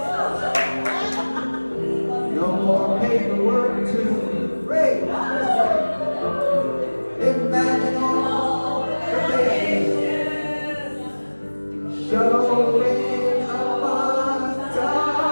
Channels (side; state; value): both; inverted; correlation -1.00